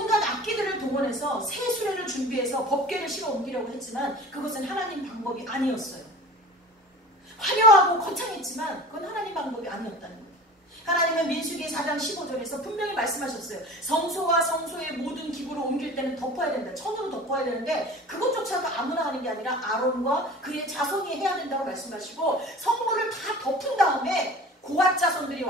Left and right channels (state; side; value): normal; both; correlation 0.40